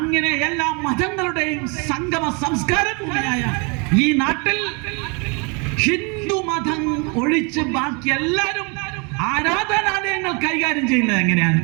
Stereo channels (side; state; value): left; quieter; 32.1 dB